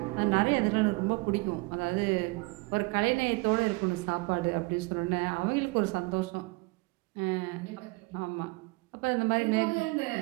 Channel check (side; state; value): left; quieter; 26.0 dB